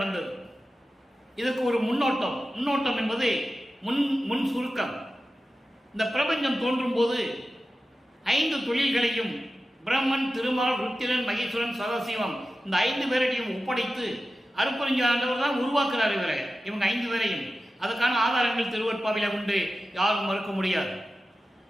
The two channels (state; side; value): normal; both; correlation 0.93